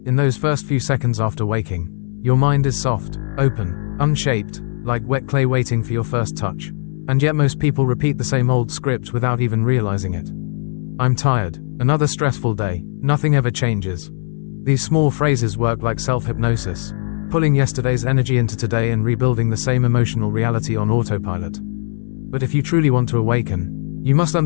In those first few seconds after waking, your mind is soft, open, unshaped, like wet clay waiting for your first touch. And yet most people repeat the same old script without even realizing it. I'm tired, another stressful day, nothing ever changes. These small phrases work like self-hypnosis, pulling yesterday's energy into today and rebuilding the same emotional reality on autopilot. But if you truly want to awaken, you must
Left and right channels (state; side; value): silent; right; 67 dB below the other